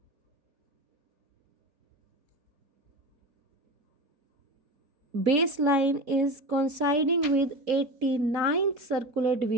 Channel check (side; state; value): left; late; 4.2 ms